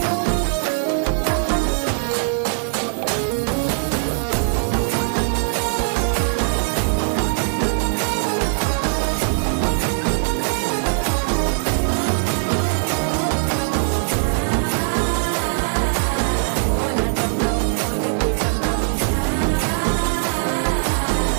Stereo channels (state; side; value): silent; left; digital silence